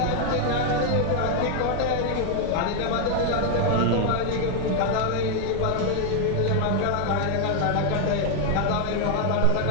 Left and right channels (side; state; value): both; different; correlation 0.00